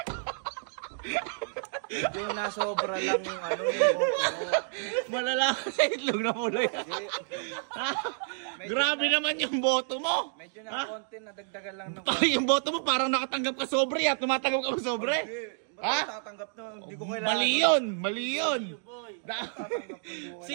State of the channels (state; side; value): silent; left; digital silence